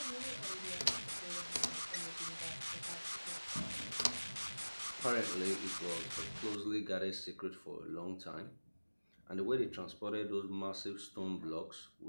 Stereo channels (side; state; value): both; inverted; correlation -1.00